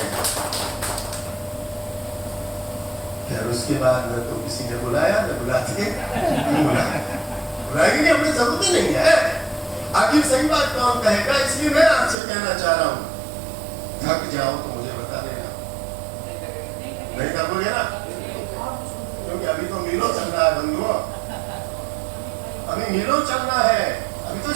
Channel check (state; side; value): drops out; left; at 12.2 s